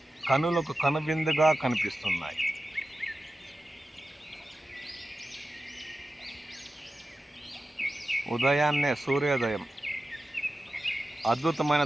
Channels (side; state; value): both; normal; correlation 0.93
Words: కనులకు కనువిందుగా కనిపిస్తున్నాయి. ఉదయాన్నే సూర్యోదయం, అద్భుతమైన